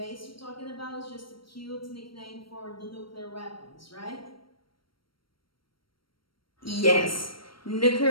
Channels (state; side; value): late; right; 0.74 ms